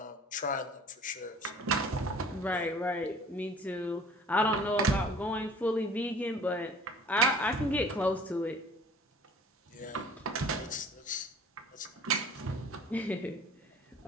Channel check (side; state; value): both; normal; correlation 0.48